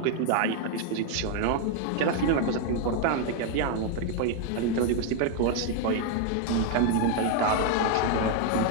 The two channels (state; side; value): different; both; correlation 0.00